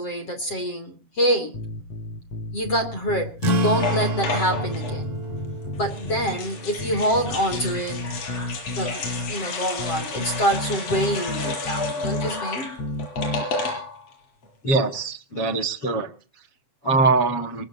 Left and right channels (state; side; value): late; right; 7.6 ms